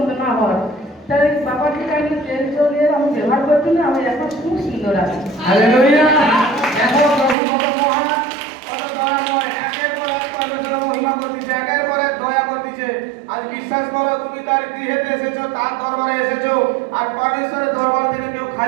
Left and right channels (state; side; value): drops out; left; at 7.4 s